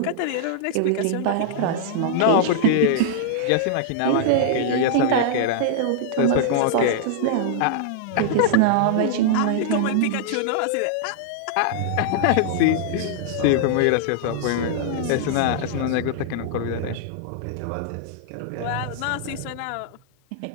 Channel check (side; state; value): both; different; correlation -0.01